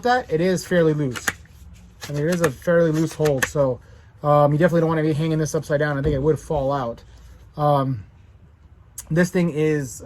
that, it is fairly loose. I mean, it is a fairly loose hold, so you definitely don't want to be hanging this upside down. I think it would fall out. This thing is,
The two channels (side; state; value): both; identical; correlation 1.00